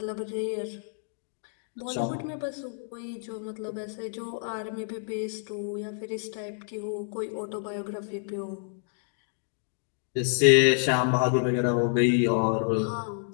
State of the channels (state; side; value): silent; right; digital silence